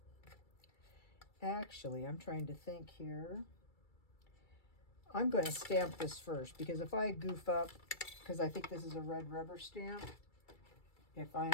Actually, I'm trying to think here. I'm going to stamp this first because if I goof up, because I think this is a red rubber stamp, if I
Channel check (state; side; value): late; right; 2.3 ms